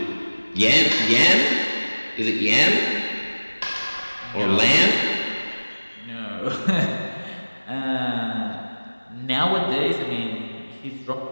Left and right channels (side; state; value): both; inverted; correlation -1.00